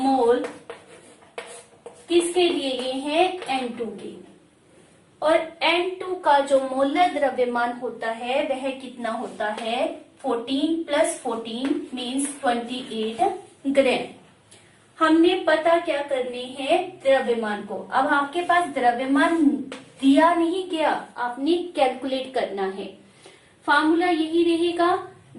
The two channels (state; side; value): identical; both; correlation 1.00